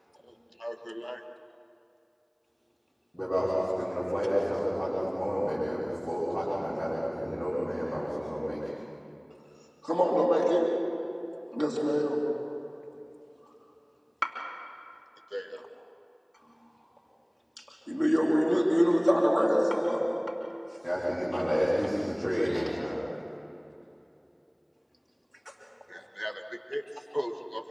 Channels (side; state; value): both; identical; correlation 1.00